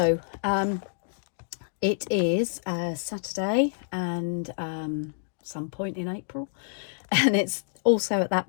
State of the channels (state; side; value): silent; right; digital silence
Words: it is Saturday and some point in April, and it's also at that